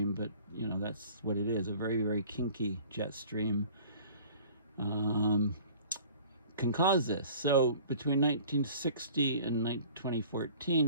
but you know, that's what it is, a very, very kinky jet stream can cause this. So between 1960 and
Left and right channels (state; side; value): inverted; both; correlation -0.47